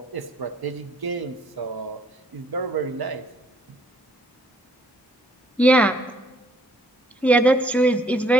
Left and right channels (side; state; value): both; normal; correlation 0.65